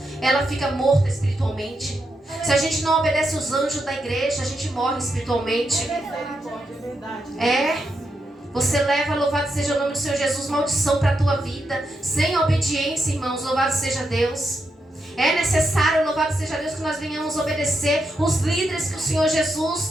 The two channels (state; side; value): normal; both; correlation 0.84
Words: ela fica morta espiritualmente. Se a gente não obedece os anjos da igreja, a gente morre espiritualmente. Você leva, louvado seja o nome do Senhor Jesus, maldição para a tua vida. Sem obediência, irmãos, louvado seja Deus. É necessário, louvado seja Deus, que nós venhamos obedecer os líderes que o Senhor